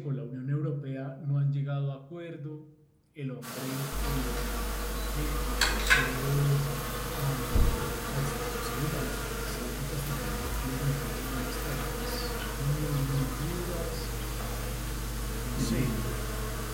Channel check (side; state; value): both; identical; correlation 1.00